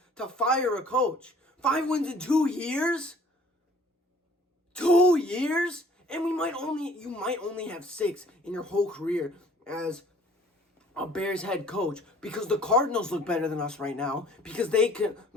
to fire a coach. 5 wins in 2 years? 2 years? And you might only have 6 in your whole career as a Bears head coach, because the Cardinals look better than us right now, because they can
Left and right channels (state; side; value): normal; both; correlation 0.54